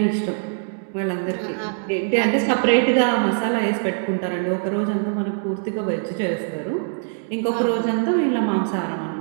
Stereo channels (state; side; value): silent; left; digital silence